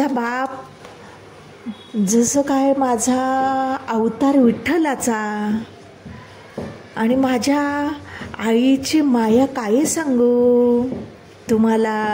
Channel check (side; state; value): both; identical; correlation 1.00